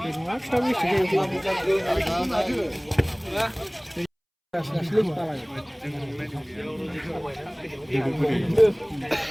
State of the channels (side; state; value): both; identical; correlation 1.00